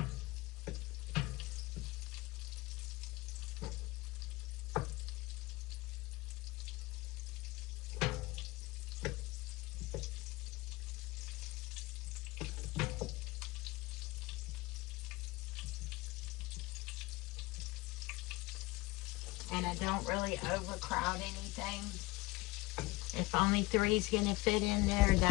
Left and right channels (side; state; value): right; quieter; 21.7 dB